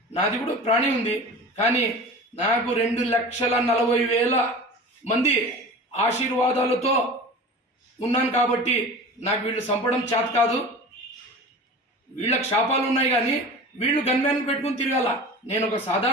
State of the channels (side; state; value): both; normal; correlation 0.36